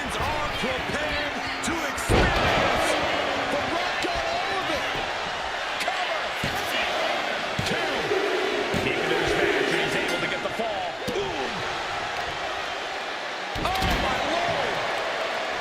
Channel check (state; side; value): identical; both; correlation 1.00